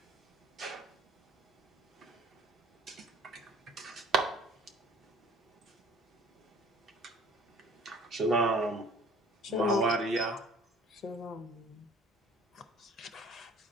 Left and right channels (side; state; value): both; normal; correlation 0.51